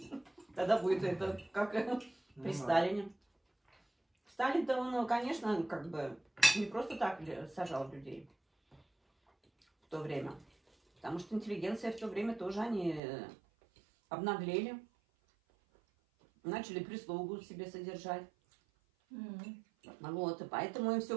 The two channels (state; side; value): drops out; left; at 13.0 s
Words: Тогда будет это как Ну при да. Сталине. Сталин-то он, конечно, как бы не просто так сажал людей в то время. Потому что интеллигенция в то время тоже они обнаглели. Начали прислугу себе содержать. Вот, и поэтому им все